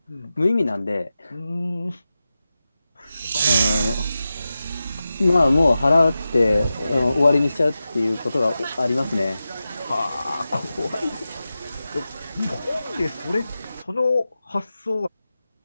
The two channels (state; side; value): inverted; both; correlation -0.93